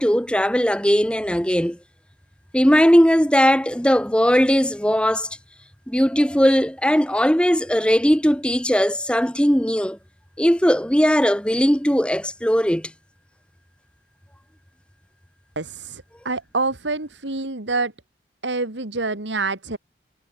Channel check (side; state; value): both; normal; correlation 0.88